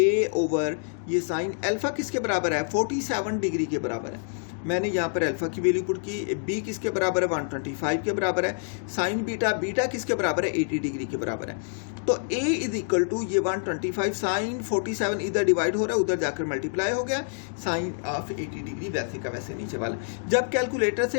ओवर ये साइन अल्फा किसके बराबर है 47 डिग्री के बराबर है। मैंने यहाँ पर अल्फा की वैल्यू पुट की, बी किसके बराबर है 125 के बराबर है, साइन बीटा, बीटा किसके बराबर है 80 डिग्री के बराबर है। तो ए इज इक्वल टू ये 125 साइन 47 इधर डिवाइड हो रहा है, उधर जाकर मल्टीप्लाई हो गया, साइन ऑफ 80 डिग्री वैसे का वैसे नीचे वाला। जब कैलकुलेटर से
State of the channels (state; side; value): silent; right; digital silence